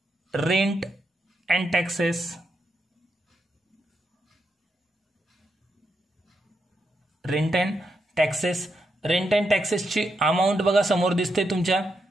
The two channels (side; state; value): both; normal; correlation 0.83